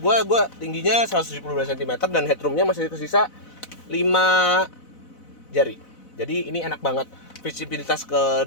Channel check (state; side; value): late; right; 4.0 ms